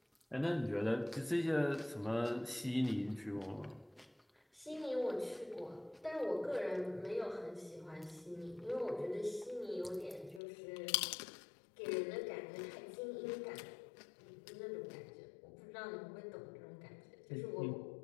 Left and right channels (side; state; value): right; drops out; at 10.4 s